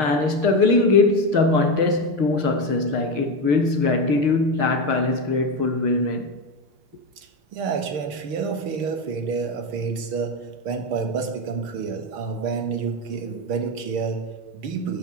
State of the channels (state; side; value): late; left; 6.5 ms